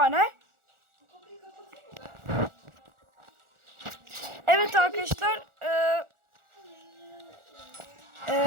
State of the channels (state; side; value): late; left; 1.4 ms